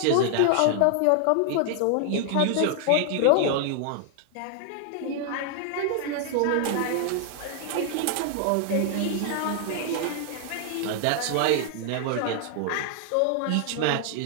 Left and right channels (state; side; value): different; both; correlation 0.00